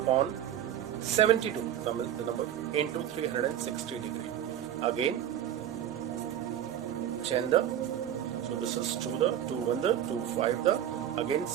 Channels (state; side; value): quieter; left; 10.7 dB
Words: 72, Tamil the number, into 360 degree. Again, Chenda, so this is 2 the, 2 1 the, 2 5 the, again